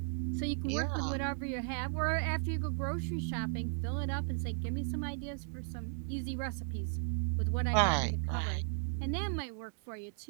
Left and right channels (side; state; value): left; silent; 54 dB below the other